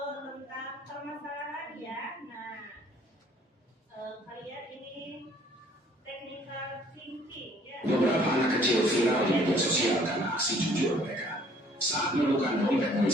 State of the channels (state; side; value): normal; both; correlation 0.58